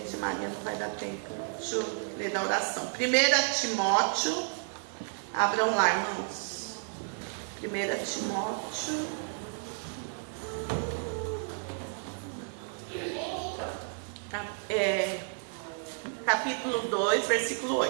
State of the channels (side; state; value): left; silent; 57 dB below the other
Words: Maria, não vai dar tempo. Deixa eu ler da oração. 1 Timóteo. Abram lá, irmãos. 1 Timóteo. Capítulo 2, versículo